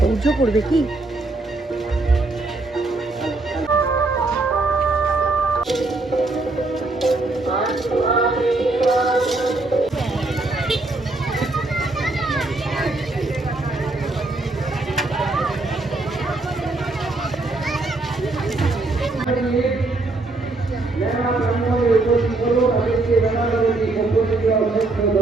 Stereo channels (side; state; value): left; quieter; 3.1 dB